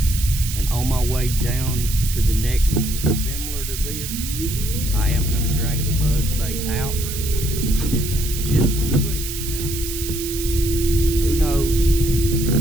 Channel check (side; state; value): right; noise; hiss, 7 dB below the sound